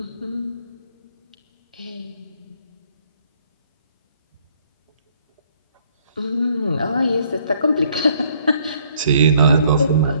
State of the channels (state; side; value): inverted; both; correlation -0.64